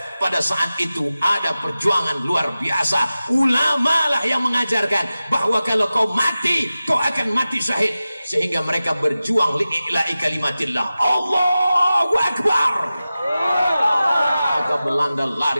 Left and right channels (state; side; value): inverted; both; correlation -0.95